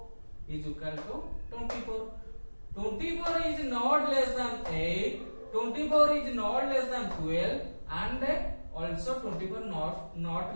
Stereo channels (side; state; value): both; inverted; correlation -1.00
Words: is equal to 24. 24 is not less than 8, 24 is not less than 12 and also 24